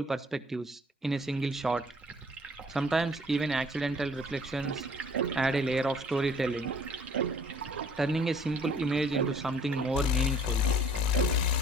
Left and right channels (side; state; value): both; normal; correlation 0.55